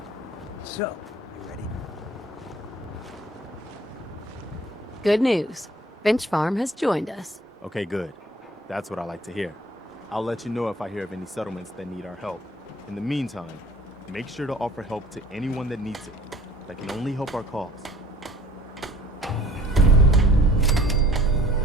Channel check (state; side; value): normal; both; correlation 0.51